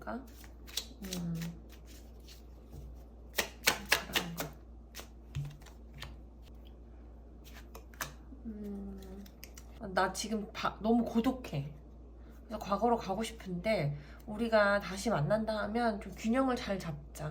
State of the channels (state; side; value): identical; both; correlation 1.00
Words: 바라는 거. 나 지금 너무 고독해. 그래서 과거로 가고 싶은데 우리가 다시 만난다 하면 좀 균형을 잘